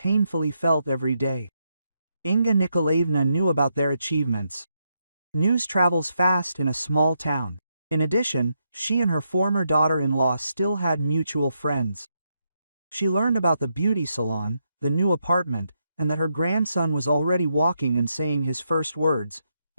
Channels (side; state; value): both; inverted; correlation -0.81